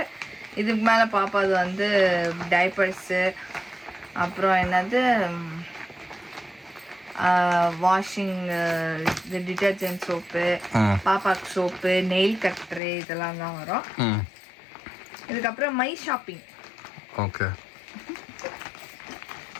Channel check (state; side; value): drops out; right; at 12.8 s